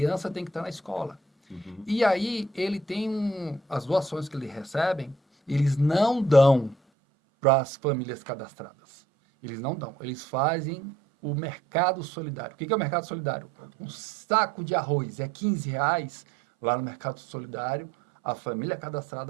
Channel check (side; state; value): left; drops out; at 6.8 s